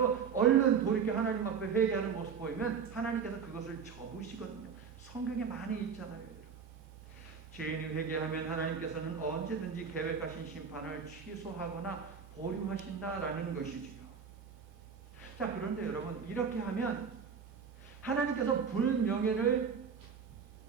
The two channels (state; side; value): quieter; left; 6.4 dB